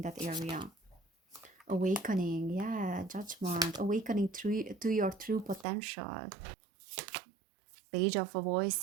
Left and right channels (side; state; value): left; drops out; at 5.7 s